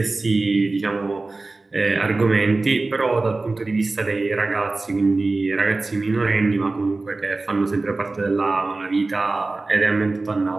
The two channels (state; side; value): quieter; left; 3.3 dB